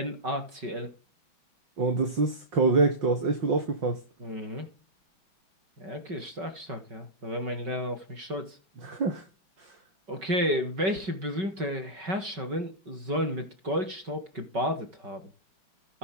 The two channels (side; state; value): left; late; 5.3 ms